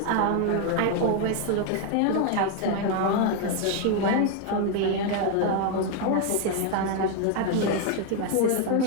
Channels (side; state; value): both; different; correlation 0.01